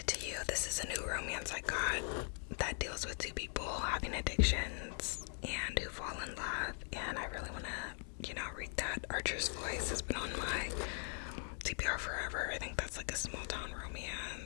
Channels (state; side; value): silent; right; 51 dB below the other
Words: is a new romance I got that deals with two people having addictions and who fall in love, and I really want to, read that. Archer's Voice has been on my TBR forever. I think that's like a small town